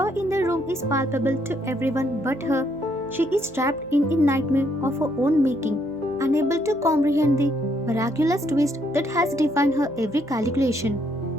in the room is palpable to everyone but her. She is trapped in a nightmare of her own making, unable to comprehend the miraculous twist that has defined her every calculation.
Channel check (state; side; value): noise; left; hum, 29 dB below the sound